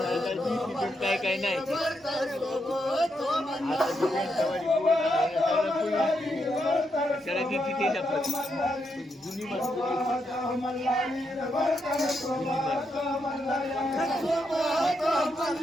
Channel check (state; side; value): normal; both; correlation 0.81